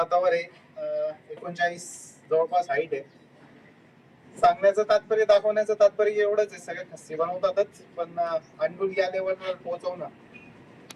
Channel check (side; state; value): both; identical; correlation 1.00